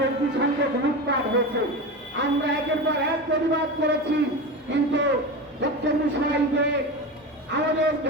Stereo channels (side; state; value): both; normal; correlation 0.24